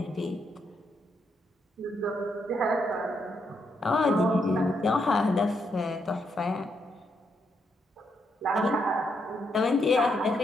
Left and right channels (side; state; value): both; normal; correlation 0.78